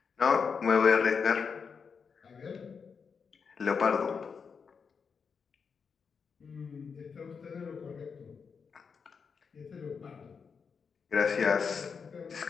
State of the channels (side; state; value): right; quieter; 5.8 dB